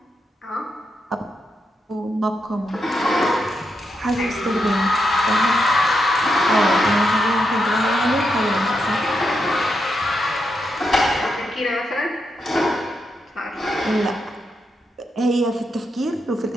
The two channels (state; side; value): normal; both; correlation 0.83